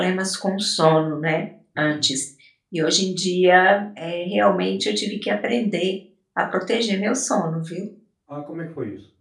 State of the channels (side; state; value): both; identical; correlation 1.00